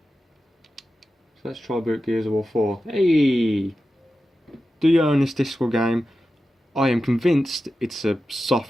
So let's try boot Gears of War 4. Hey! Do you own this disc or game? I am convinced it's a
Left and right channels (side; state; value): both; normal; correlation 0.92